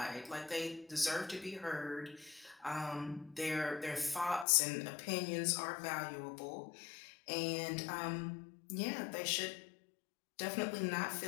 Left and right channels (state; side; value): drops out; right; at 4.5 s